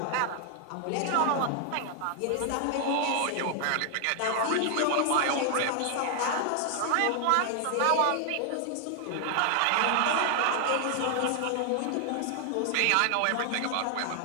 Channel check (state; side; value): different; both; correlation 0.00